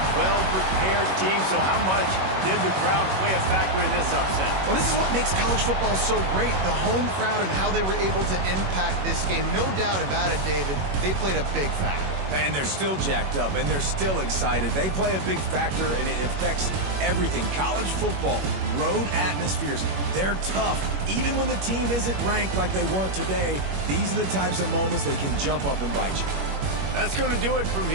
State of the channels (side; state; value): left; late; 21 ms